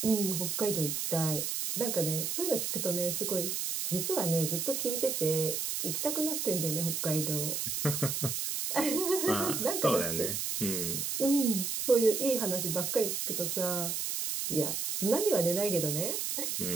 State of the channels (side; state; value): right; noise; hiss, 1 dB below the sound